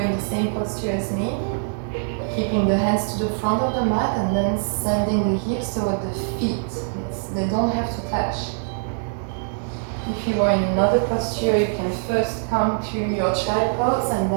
in the same posture as me, keeping the hands to the front of the mat and then sending the hips toward the feet. They don't have to touch. If you are in another posture, you can first come to your child pose and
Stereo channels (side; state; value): left; silent; digital silence